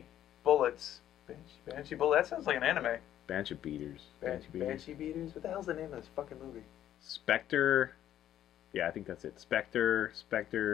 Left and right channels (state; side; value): quieter; right; 11.5 dB